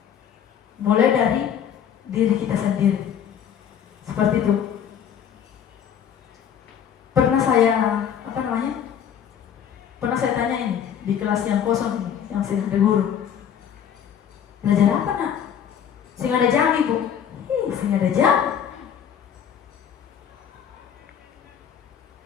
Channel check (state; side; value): quieter; right; 8.7 dB